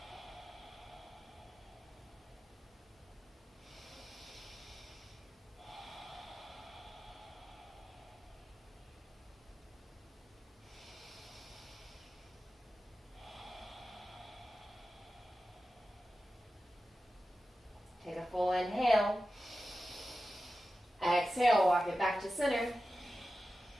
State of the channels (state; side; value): normal; both; correlation 0.93